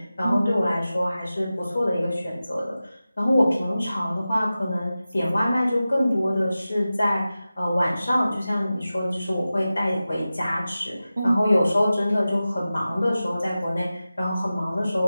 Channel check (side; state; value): both; inverted; correlation -0.95